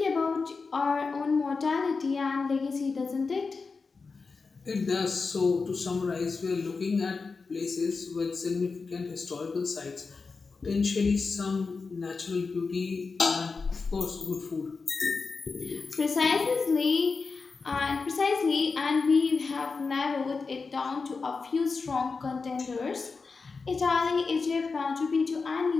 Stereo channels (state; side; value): quieter; right; 4.5 dB